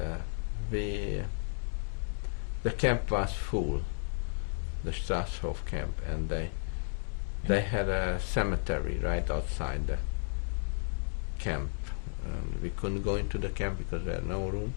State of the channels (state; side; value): silent; right; digital silence